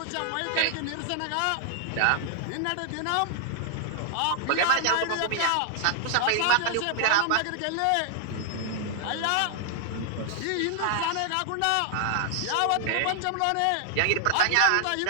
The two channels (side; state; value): both; different; correlation 0.00